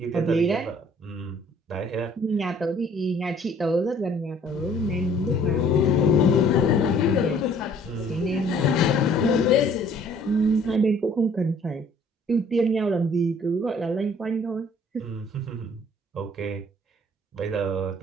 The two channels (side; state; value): both; normal; correlation 0.57